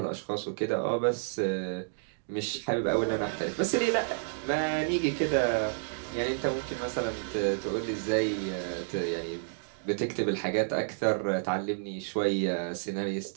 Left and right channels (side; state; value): left; silent; digital silence